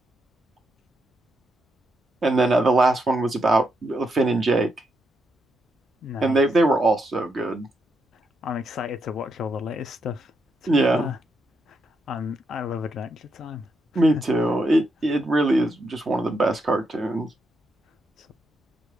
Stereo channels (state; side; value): normal; both; correlation 0.81